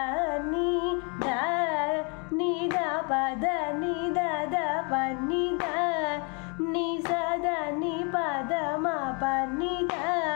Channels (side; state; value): right; quieter; 34.5 dB